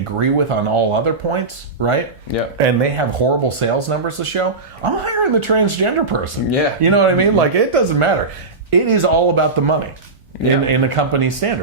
with on all other points, right? Yeah. And they have horrible sales numbers to show, I'm hiring the transgender person. Yeah. You know what I mean? Like, it doesn't matter. It is all about the money in the company's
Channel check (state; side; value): quieter; left; 3.7 dB